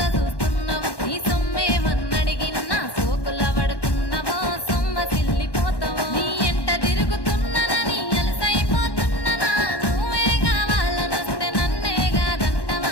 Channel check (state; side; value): late; right; 1.1 ms